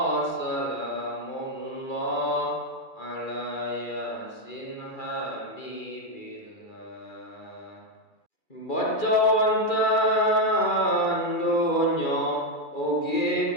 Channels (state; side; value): late; right; 2.3 ms